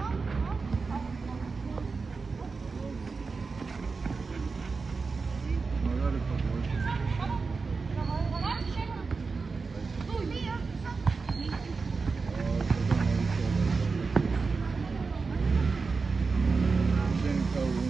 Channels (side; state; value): left; quieter; 4.5 dB